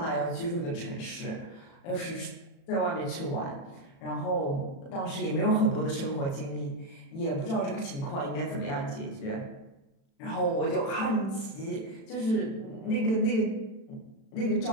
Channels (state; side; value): late; right; 36 ms